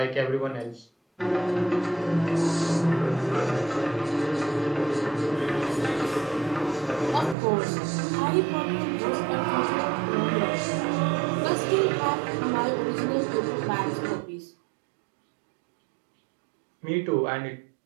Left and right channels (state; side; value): drops out; left; at 7.4 s